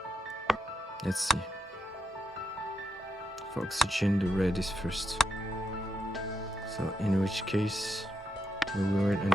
let's see. For oxygen, the red is first. So in which case, we will wait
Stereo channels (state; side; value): normal; both; correlation 0.81